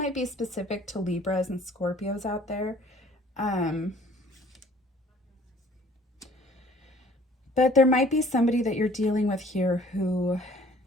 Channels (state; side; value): normal; both; correlation 0.55